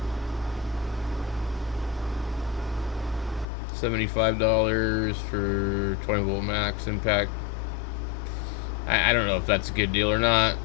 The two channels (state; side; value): drops out; right; at 3.5 s